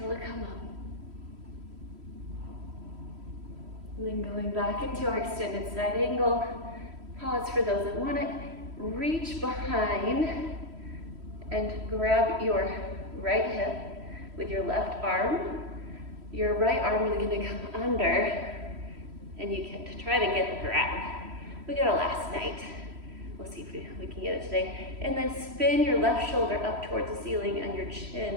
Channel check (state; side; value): late; left; 3.1 ms